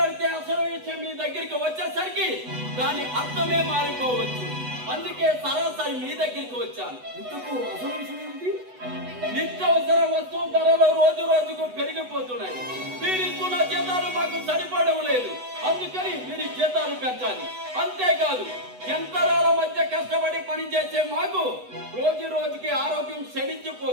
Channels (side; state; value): left; late; 8.1 ms